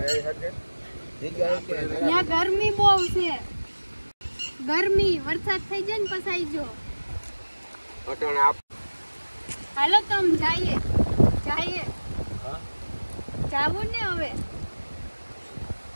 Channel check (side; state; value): both; inverted; correlation -1.00